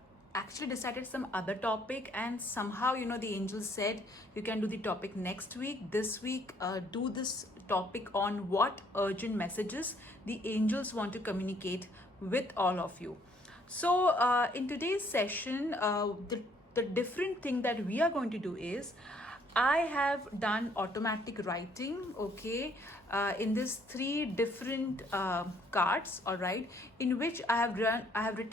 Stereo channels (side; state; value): both; normal; correlation 0.65